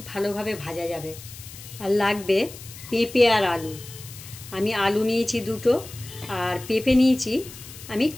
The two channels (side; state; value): left; noise; hiss, 15 dB below the sound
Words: ভালোভাবে ভাজা যাবে। আর লাগবে পেঁপে আর আলু। আমি আলু নিয়েছি 2টো, আর পেঁপে নিয়েছি আমি